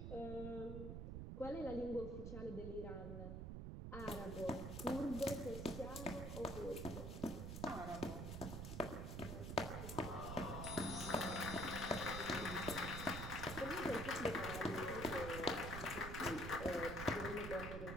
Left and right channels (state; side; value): noise; right; rumble, 5 dB below the sound